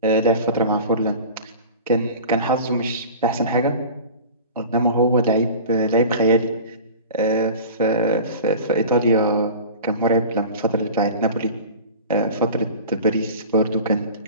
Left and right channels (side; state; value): both; inverted; correlation -0.37